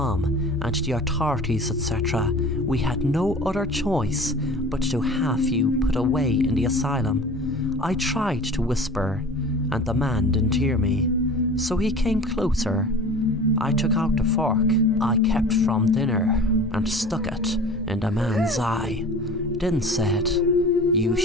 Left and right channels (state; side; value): normal; both; correlation 0.40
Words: and the authorities, etc., we had no other choice but to have you put away in the asylum." I tried to whisper, and the man didn't hear me, so he came closer. I took out the fork I kept from dinner and stuck it in the man's eye, then said, "You